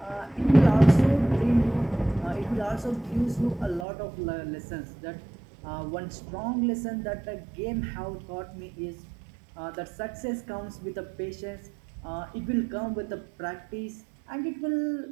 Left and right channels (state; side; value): drops out; left; at 3.9 s